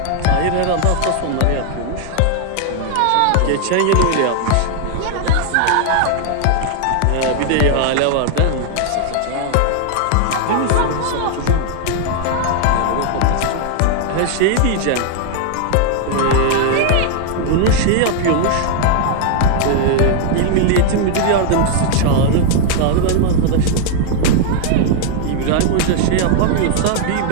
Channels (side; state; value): both; different; correlation 0.00